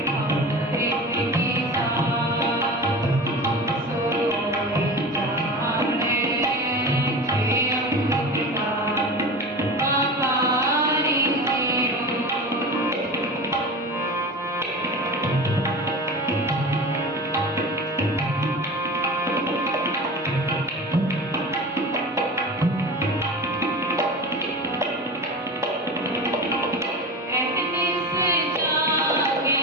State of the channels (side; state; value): both; normal; correlation 0.31